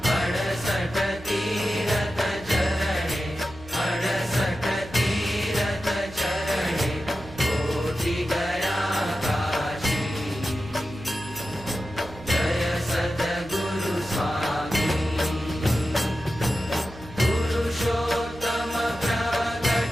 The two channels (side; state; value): right; noise; hum, 18 dB below the sound